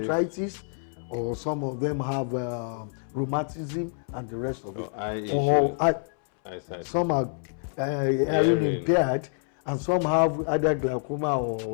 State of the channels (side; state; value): right; silent; 60 dB below the other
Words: or some of them have rheumatism and the rest of it. Eye issue. Some are hearing impaired, and some have either glaucoma